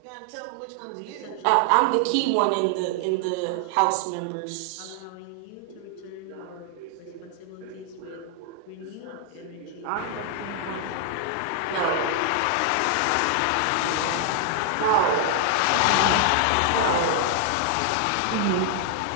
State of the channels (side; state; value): both; different; correlation 0.00